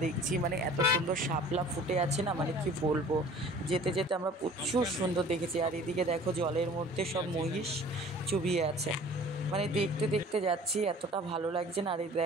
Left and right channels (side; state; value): both; normal; correlation 0.48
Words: দেখছি, মানে এত সুন্দর শাপলা ফুটে আছে না, মানে কি বলবো। যেতে যেতে আমরা প্রচুর সুন্দর দেখেছি। আর এদিকে দেখো জলের মধ্যে সব মহিষ চুবিয়ে আছে, মানে দেখতে দেখতে যাচ্ছি, এতটা ভালো লাগছে না। আর এই